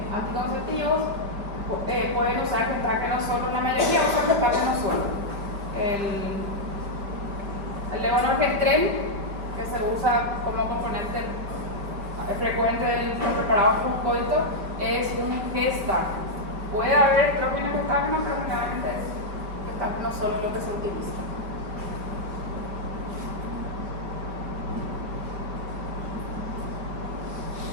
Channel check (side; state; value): left; late; 5.0 ms